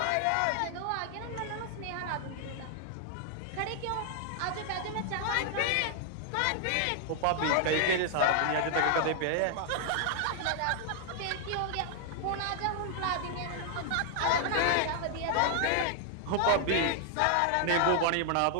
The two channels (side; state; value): both; different; correlation 0.00